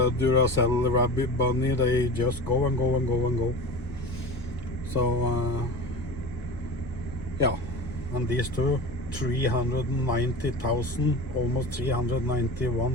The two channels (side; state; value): both; normal; correlation 0.32